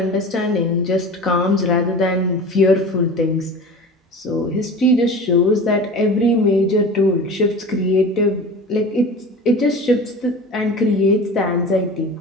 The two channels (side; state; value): both; normal; correlation 0.35